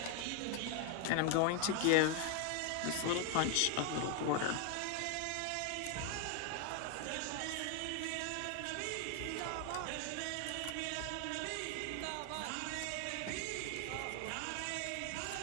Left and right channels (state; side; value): different; both; correlation 0.01